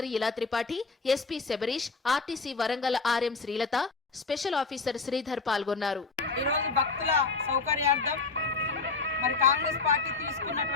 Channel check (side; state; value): right; quieter; 4.2 dB